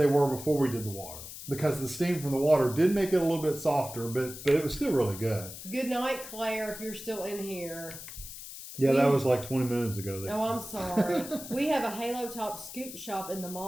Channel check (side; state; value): left; noise; hiss, 12 dB below the sound